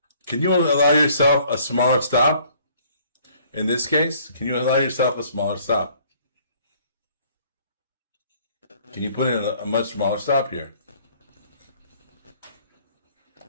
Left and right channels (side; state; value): both; inverted; correlation -0.59